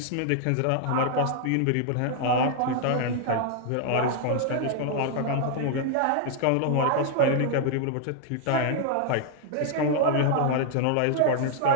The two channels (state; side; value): different; both; correlation 0.00